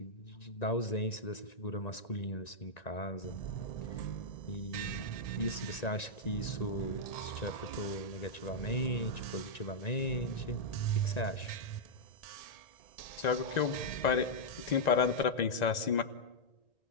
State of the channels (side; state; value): right; late; 1.9 ms